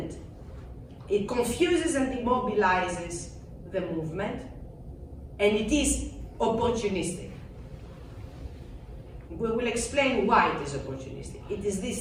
It confuses and immobilizes the movement, and it is opportunistic. We will explain why it is opportunistic. It is this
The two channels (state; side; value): identical; both; correlation 1.00